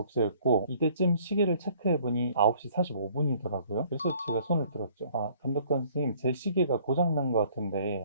이때쯤 시계를 체크해보니 9시 45분이더라고요. 그래서 제가 손을 들었죠. 아, 감독관 선생님 제 시계가 고장난 것 같은데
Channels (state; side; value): inverted; both; correlation -0.58